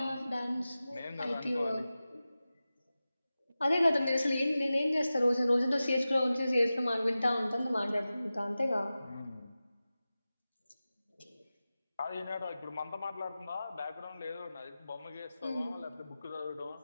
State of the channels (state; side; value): inverted; both; correlation -0.95